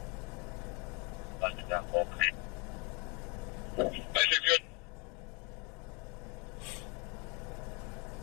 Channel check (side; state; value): right; quieter; 29.0 dB